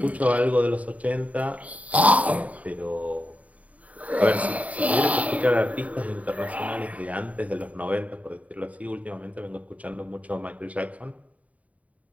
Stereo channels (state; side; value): late; left; 0.069 ms